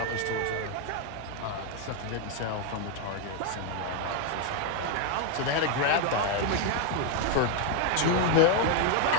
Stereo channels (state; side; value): different; both; correlation 0.01